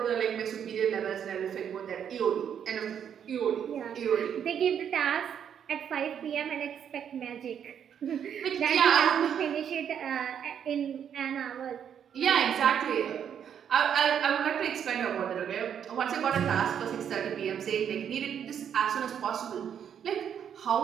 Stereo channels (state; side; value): quieter; left; 8.5 dB